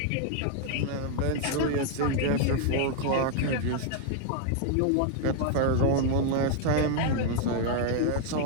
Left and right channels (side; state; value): both; different; correlation 0.00